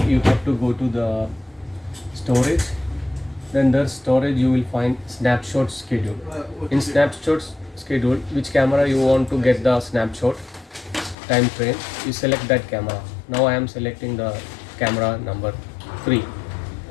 you have to go to the storage. Then the storage you will find snapshot schedule. In snapshots schedule, which camera you want to get the snapshot time frame, you select that camera. Now I am selecting the camera number 3,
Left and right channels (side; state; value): right; drops out; at 11.2 s